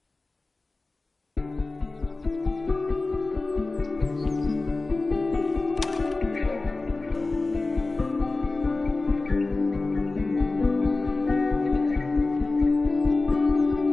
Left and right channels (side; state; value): right; quieter; 3.4 dB